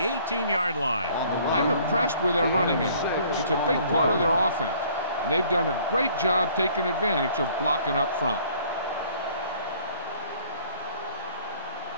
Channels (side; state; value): both; inverted; correlation -0.57